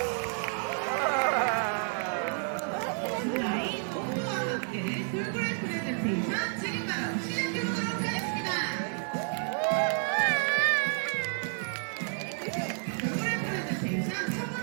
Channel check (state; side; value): silent; left; 56 dB below the other